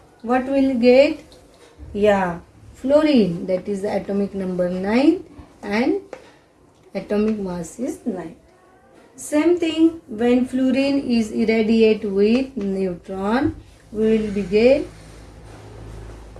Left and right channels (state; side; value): identical; both; correlation 1.00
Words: what will get? Yeah, fluorine, that is the atomic number 9 and atomic mass is 9. Same thing when fluorine is irradiated with neutron, we will be get